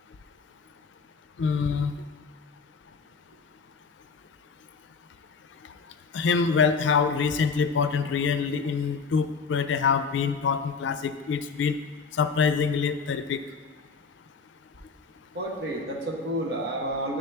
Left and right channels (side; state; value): right; quieter; 4.9 dB